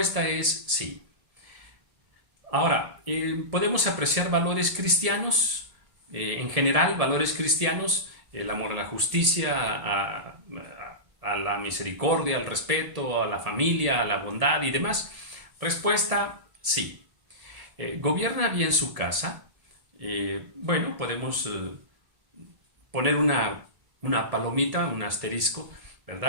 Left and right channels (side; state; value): left; late; 1.7 ms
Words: es sí. Ahora, ¿podemos apreciar valores cristianos? En general, valores cristianos, el amor a la justicia, a la misericordia, al respeto, a la familia, a la bondad y demás? Respuesta, sí. ¿Gobierna bien su casa? Bueno, podemos poner una palomita, un asterisco,